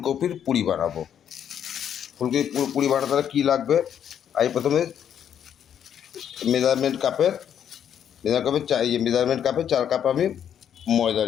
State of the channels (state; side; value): quieter; right; 9.1 dB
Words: পুরি বানাবো। ফুলকপির পুরি বানাতে কী লাগবে, আমি প্রথমে মেজারমেন্ট কাপের 4 কাপ আমি ময়দা